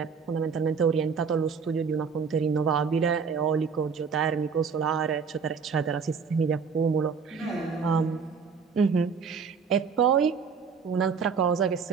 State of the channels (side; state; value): left; quieter; 5.8 dB